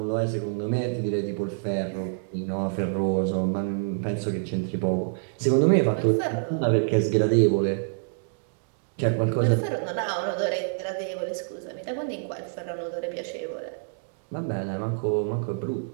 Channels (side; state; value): left; silent; digital silence